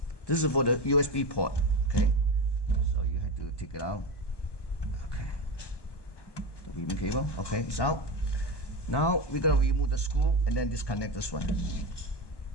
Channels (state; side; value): late; right; 1.2 ms